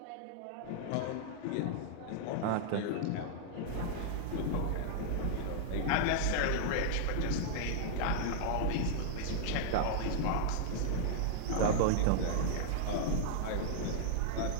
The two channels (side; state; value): both; different; correlation -0.01